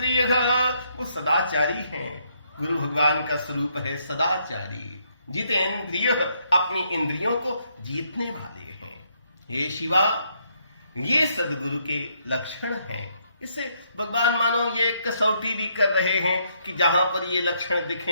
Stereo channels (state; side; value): inverted; both; correlation -0.73